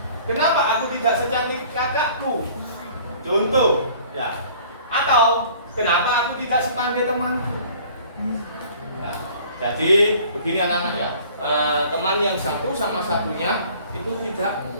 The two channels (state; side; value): inverted; both; correlation -0.51